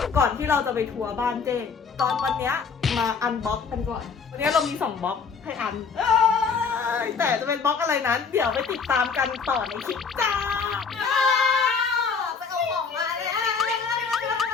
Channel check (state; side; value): quieter; right; 5.6 dB